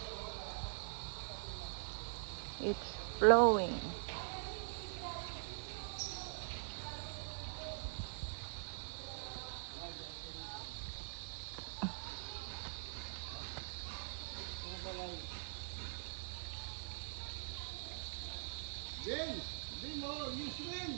It's flowing. Ben, Bimo, you swim.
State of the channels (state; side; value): silent; left; digital silence